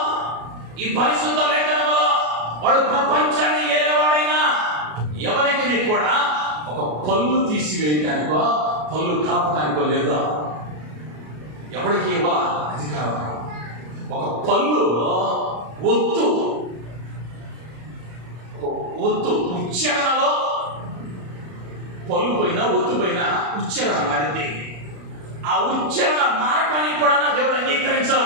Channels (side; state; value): left; late; 33 ms